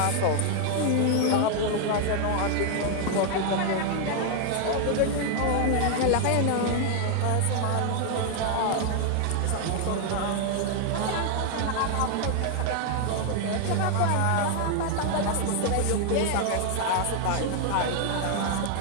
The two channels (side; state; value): both; different; correlation 0.00